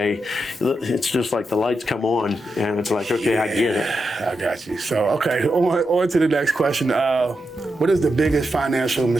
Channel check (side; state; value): both; normal; correlation 0.86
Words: it's just like the lights come on, and it's like, okay, I get it. I got you. So, okay, on to the next question. What is the biggest financial